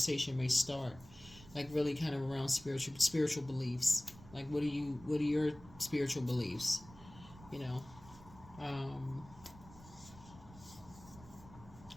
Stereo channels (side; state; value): right; noise; rumble, 19 dB below the sound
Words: may start. Like really kind of around spiritual beliefs. Like what are your spiritual beliefs?